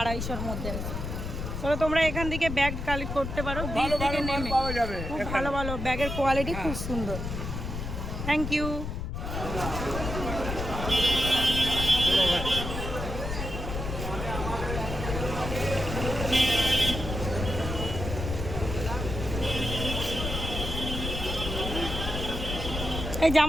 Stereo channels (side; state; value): left; noise; rumble, 5 dB below the sound